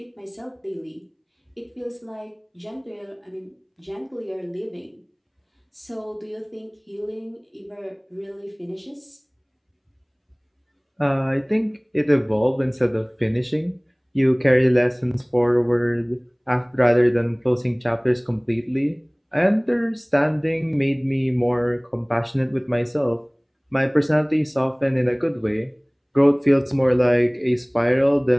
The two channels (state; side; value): identical; both; correlation 1.00